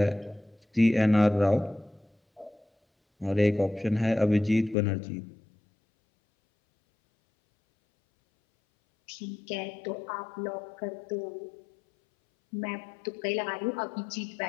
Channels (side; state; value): right; drops out; at 4.8 s